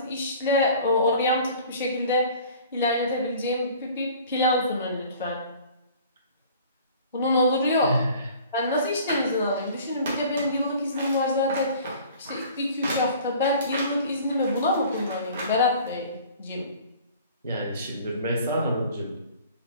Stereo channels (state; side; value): inverted; both; correlation -0.48